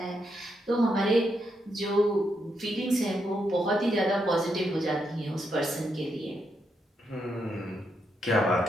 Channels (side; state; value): both; normal; correlation 0.81